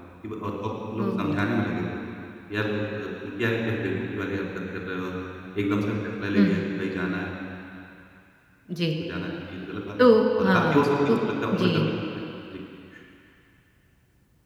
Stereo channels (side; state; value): both; identical; correlation 1.00